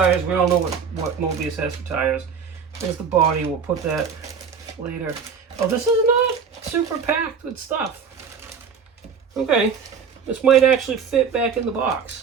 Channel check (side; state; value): left; quieter; 6.3 dB